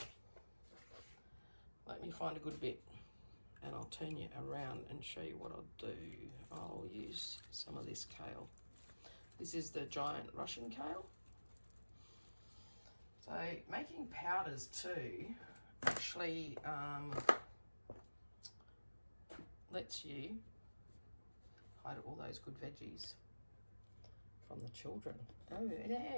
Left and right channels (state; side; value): inverted; both; correlation -1.00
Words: let me find a good bit and I'll turn you around and show you what I'll do. I'll use some of this kale. This is the giant Russian kale. So making powders too actually lets you hide all those good veggies from the children. Oh